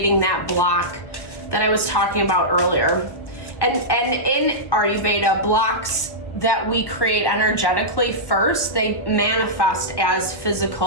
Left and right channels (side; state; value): right; late; 1.2 ms